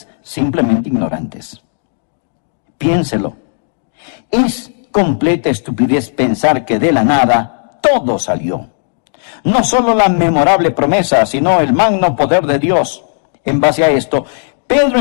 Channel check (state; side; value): silent; right; digital silence